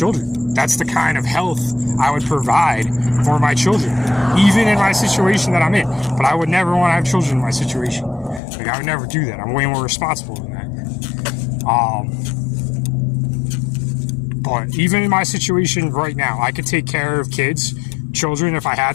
That's the kind of health I would provide for my children, even in my situation that I'm in. But I would never want to have children in my situation. Like, I would never do that. I'm way more responsible than that. But even in my situation right now, I could take care of children, if I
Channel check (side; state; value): right; drops out; at 8.4 s